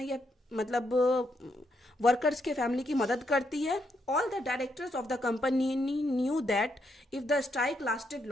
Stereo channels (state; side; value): normal; both; correlation 0.78